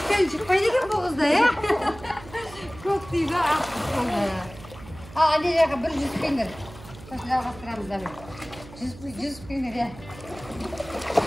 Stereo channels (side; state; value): right; noise; hum, 17 dB below the sound